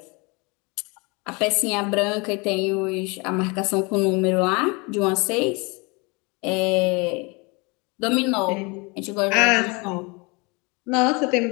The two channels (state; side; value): quieter; right; 28.5 dB